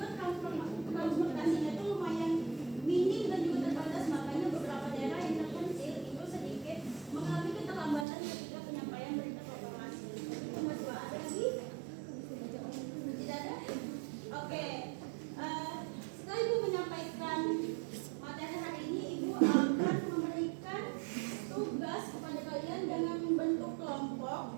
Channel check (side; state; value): left; drops out; at 8.1 s